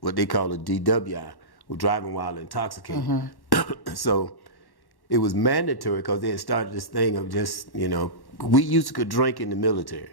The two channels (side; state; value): right; late; 1.1 ms